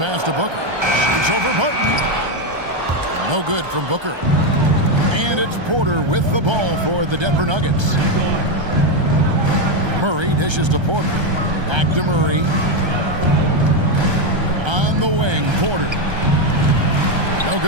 to Booker. It's over Barton. No good from Booker. And it's Porter with the ball for the Denver Nuggets. Murray dishes to Porter. Back to Murray. On the wing, Porter. No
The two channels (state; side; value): late; left; 1.3 ms